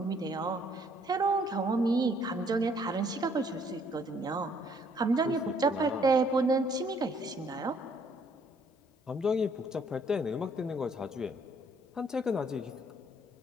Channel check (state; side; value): normal; both; correlation 0.65